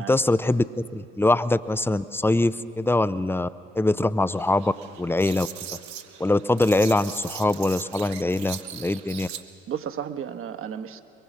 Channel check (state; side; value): normal; both; correlation 0.86